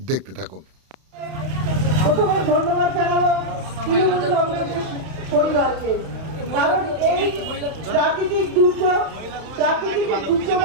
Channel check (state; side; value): late; left; 31 ms